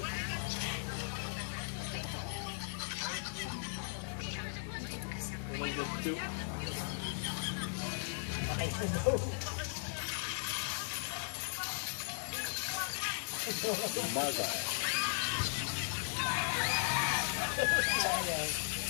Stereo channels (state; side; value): silent; right; digital silence